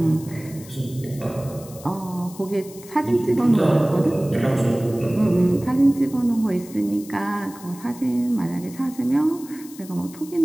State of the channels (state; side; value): noise; left; hiss, 19 dB below the sound